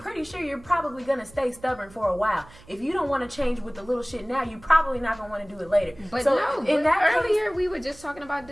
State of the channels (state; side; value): noise; right; hum, 23 dB below the sound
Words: sure you're probably going to stay stubborn for a while. If you don't want to change with the little shit now, you're probably not going to want to do it later. But so no, in that earlier we were just talking about